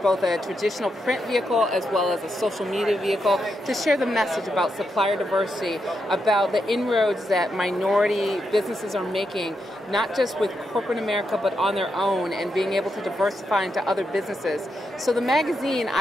a traditional print vehicle as well as a social media vehicle to share the message about supplier diversity, about the inroads that minority businesses are making, not just with corporate America, but on their own, and being able to diversify into other businesses. So the magazine,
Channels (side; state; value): both; normal; correlation 0.83